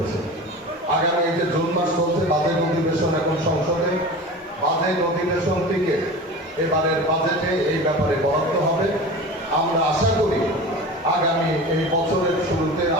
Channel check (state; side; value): normal; both; correlation 0.33